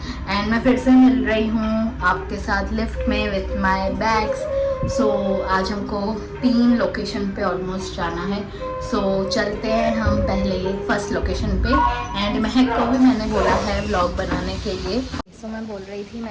एंड मैं फिर से मिल रही हूँ आपके साथ लिफ्ट में विथ माय बैग्स। आज हमको 3 लोकेशन पे ऑलमोस्ट जाना है। चलते हैं हम पहले फर्स्ट लोकेशन पे एंड महक को भी मैंने बोला है व्लॉग बनाने के लिए। मैं बोल रही थी,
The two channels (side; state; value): both; identical; correlation 1.00